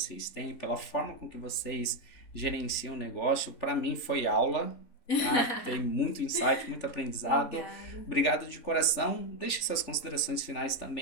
têm, pela forma com que vocês gerenciam o negócio. Para mim foi aula. tá? Tem muito insight, muito aprendizado. Obrigada. Obrigado de coração. Deixe suas considerações finais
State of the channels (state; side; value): late; right; 3.4 ms